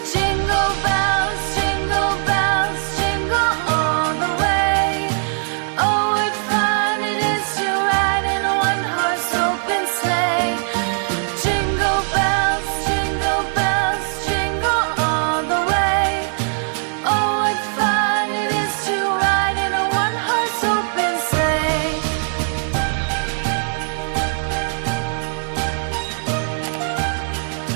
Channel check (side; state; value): left; silent; 56 dB below the other